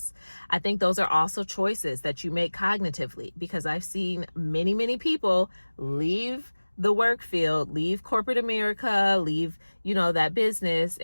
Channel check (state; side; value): inverted; both; correlation -1.00